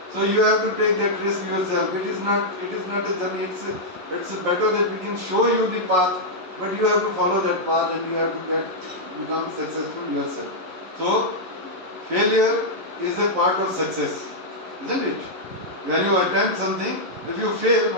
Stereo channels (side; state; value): left; late; 11 ms